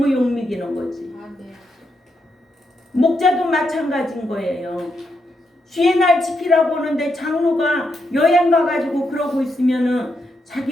욕먹이는 거지. 목자도 마찬가지인 거예요. 주의 날 지키라고 하는데 장로가 여행 가가지고 그러고 있으면은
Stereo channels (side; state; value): both; normal; correlation 0.82